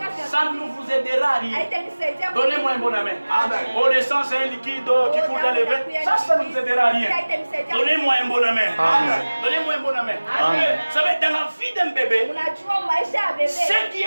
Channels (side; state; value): both; inverted; correlation -1.00